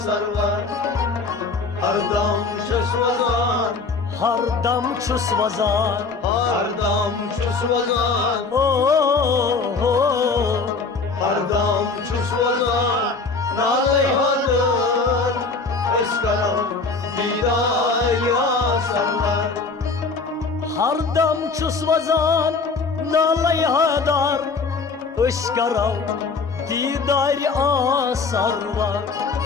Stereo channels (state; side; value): quieter; right; 4.3 dB